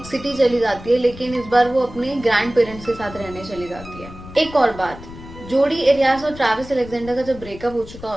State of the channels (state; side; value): noise; left; rumble, 16 dB below the sound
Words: सिटी चली जाती है, लेकिन इस बार वो अपने ग्रैंड पेरेंट्स के साथ रहने चली जाती है। एक और बात, जोडी एरियाज और ट्रैविस अलेक्जेंडर का जब ब्रेकअप हो चुका